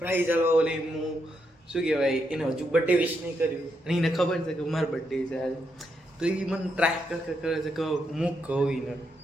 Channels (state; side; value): normal; both; correlation 0.80